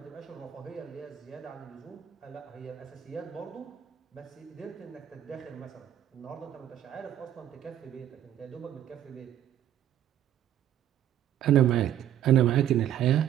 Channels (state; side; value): quieter; left; 11.2 dB